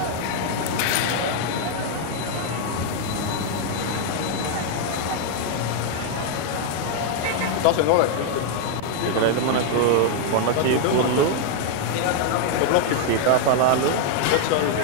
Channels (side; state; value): both; different; correlation 0.00